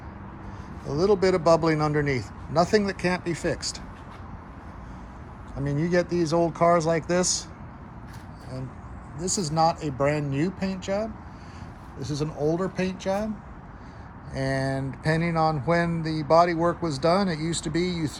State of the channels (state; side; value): identical; both; correlation 1.00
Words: A little bit of bubbling underneath. Nothing that can't be fixed. I mean, you get these old cars like this, and this is not a brand new paint job. This is an older paint job. And depending on when the body work was done, it used to be you